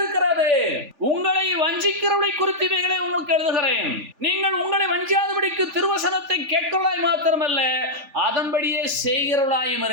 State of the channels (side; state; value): left; late; 3.5 ms